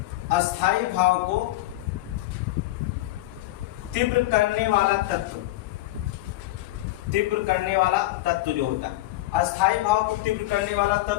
अस्थायी भाव को तीव्र करने वाला तत्व, तीव्र करने वाला तत्व जो होता है, अस्थायी भाव को तीव्र करने वाला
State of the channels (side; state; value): right; quieter; 17.1 dB